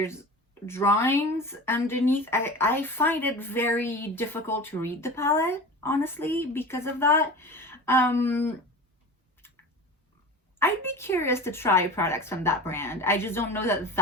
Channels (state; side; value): normal; both; correlation 0.33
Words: drawings underneath. I find it very difficult to read the palette, honestly, because of that. I'd be curious to try products from that brand. I just don't know that